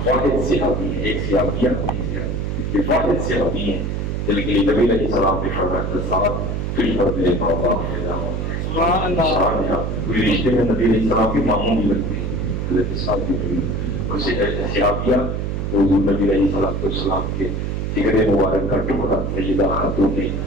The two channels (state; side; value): noise; right; hum, 2 dB below the sound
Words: واحد صحابی ہے، ایک صحابیہ یہ واحد صحابی ہیں جن کے لیے نبی علیہ السلام نے فرمایا ساتھ تجھ پر میرے بابا فدا ہوتے کوئی رشتے میں نبی علیہ السلام کے ماموں بھی لگتے ہیں، حضرت سعد بن ابی صحابیہ حضور نبی علیہ السلام کے جگر مبارک کا ٹکڑا سیدہ خاتون